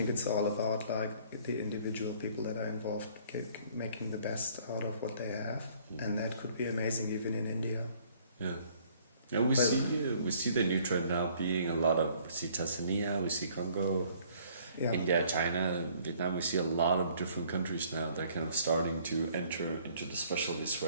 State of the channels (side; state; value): both; inverted; correlation -0.59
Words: it's all about like the individual people that are involved making the best out of what they have, and that could be amazing even in India. Yeah. Yeah, we see the new trend now being a lot of, we see Tanzania, we see Congo, India, China, Vietnam. We see a lot of different countries now that are kind of starting to enter into the specialty